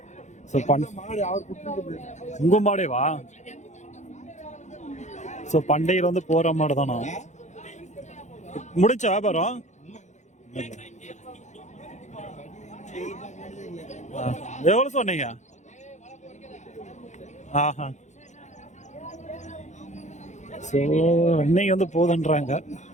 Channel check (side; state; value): right; late; 0.34 ms